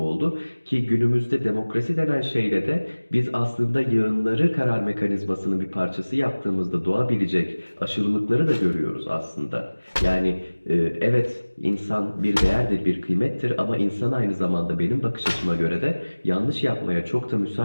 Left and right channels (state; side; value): inverted; both; correlation -1.00